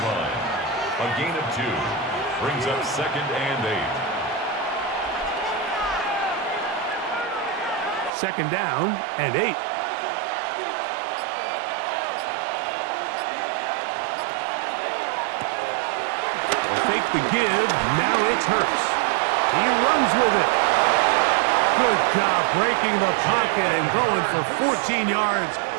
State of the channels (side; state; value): left; drops out; at 8.1 s